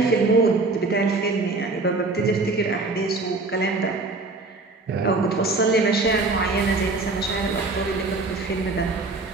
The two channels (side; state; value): left; quieter; 3.5 dB